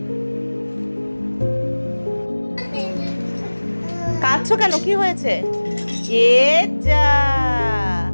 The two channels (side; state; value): both; inverted; correlation -1.00